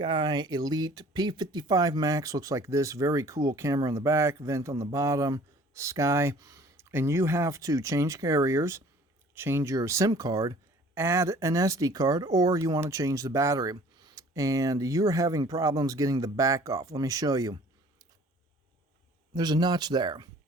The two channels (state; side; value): normal; both; correlation 0.51